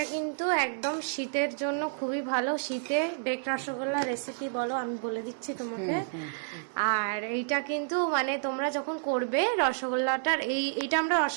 কিন্তু একদম শীতের জন্য খুবই ভালো। শীতে বেক রসগোল্লা রেসিপি বলো, আমি বলে দিচ্ছি তোমাকে। আর এইটা কিন্তু মানে তোমরা যখন করবে রসগোল্লাটার, এইটা আমরা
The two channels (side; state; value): left; silent; digital silence